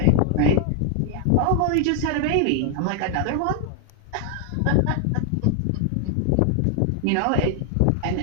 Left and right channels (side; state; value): both; different; correlation 0.00